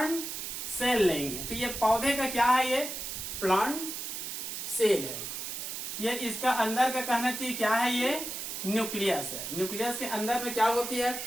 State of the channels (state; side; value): noise; right; hiss, 6 dB below the sound